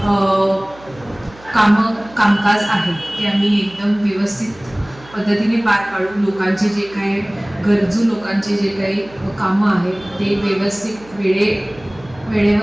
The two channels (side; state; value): right; noise; hum, 23 dB below the sound